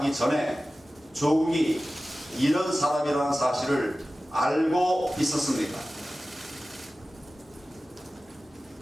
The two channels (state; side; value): normal; both; correlation 0.96